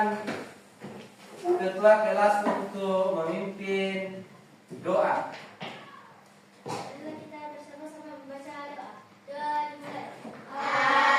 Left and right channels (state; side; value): identical; both; correlation 1.00